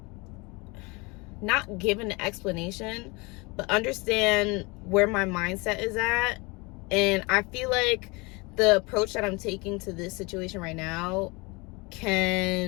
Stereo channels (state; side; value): quieter; right; 26.8 dB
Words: give an explanation, but understand where my mindset is at. And I feel like the approach that I'm taking to this situation right now